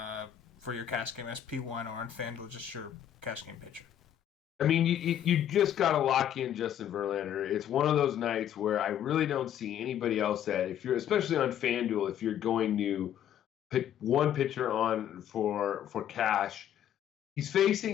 for your cash game SP1 or on FanDuel, just your cash game pitcher. I mean, you just got to lock in Justin Verlander. It's one of those nights where I really don't see anybody else that, if you're, especially on FanDuel, if you're going to pick one pitcher on for cash, he's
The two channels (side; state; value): right; quieter; 10.4 dB